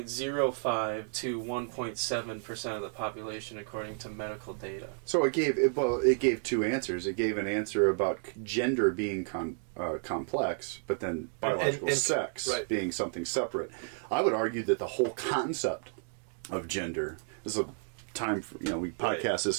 to 1.7% of the population according to medical data. So it gave two answers. It gave an answer about gender being complex, but then biological and sex right. being something separate. I would argue that the whole concept of gender, this is a time for, we podcast this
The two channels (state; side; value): silent; left; 56 dB below the other